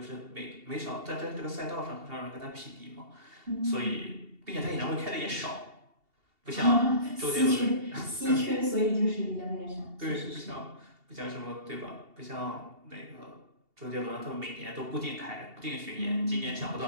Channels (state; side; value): late; left; 2.7 ms